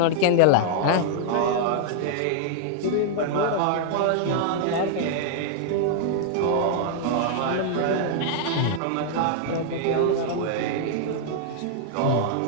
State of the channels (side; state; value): both; different; correlation -0.01